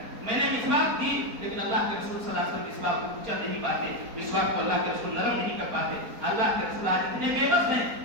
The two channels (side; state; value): left; late; 4.3 ms